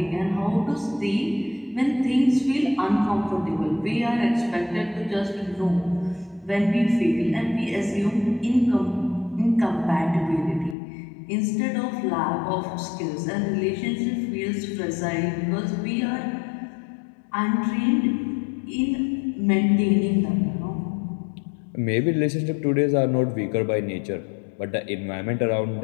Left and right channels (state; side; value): drops out; right; at 10.8 s